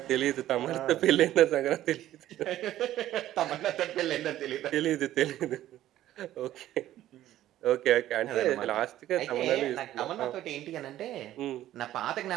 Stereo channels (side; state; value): left; quieter; 13.4 dB